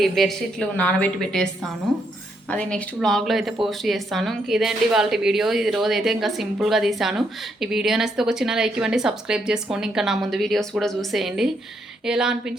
బెడ్షీట్లు నానబెట్టి పెట్టేస్తాను. అది నెక్స్ట్ వ్లాగ్లో అయితే పోస్ట్ చేస్తాను. ఇంక ఇదేంటి వాళ్ళ వీడియో. ఈ రోజు అయితే ఇంకా సింపుల్గా తీసాను. ఈ వీడియో నచ్చితే ఒక చిన్న లైక్ ఇవ్వండి, సబ్స్క్రైబ్ చేసుకోండి, ఇంకా నా ముందు వీడియోస్ కూడా చూసేయండి. ఎలా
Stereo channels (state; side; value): normal; both; correlation 0.76